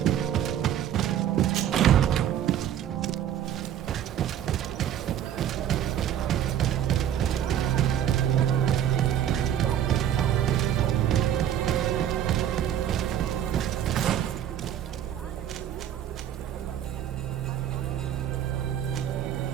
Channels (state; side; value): quieter; left; 10.4 dB